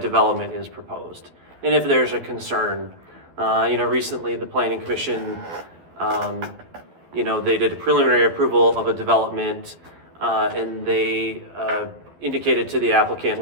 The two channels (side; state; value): left; late; 12 ms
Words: is proposed. And if there's a concern, recently the planning commission, they did a preliminary approval of a development and they indicated to the applicant,